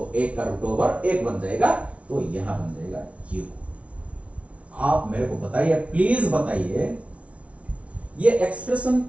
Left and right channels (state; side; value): late; left; 0.064 ms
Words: एक का रूट ओवर एक बन जाएगा, तो यहां बन जाएगा क्यू। आप मेरे को बताइए, प्लीज बताइए ये एक्सप्रेशन